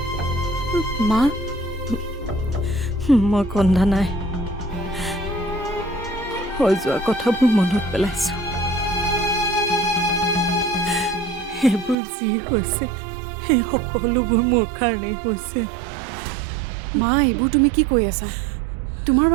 মা, মই কন্দা নাই, হৈ যোৱা কথাবোৰ মনত পেলাইছো। সেইবোৰ যি হৈছে সেই সকলোবোৰ মোৰ কাৰণেই হৈছে। মা, এইবোৰ তুমি কি কৈ আছা? তোমাৰ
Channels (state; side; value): drops out; left; at 12.0 s